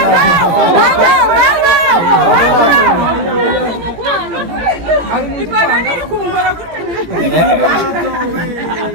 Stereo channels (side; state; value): left; late; 17 ms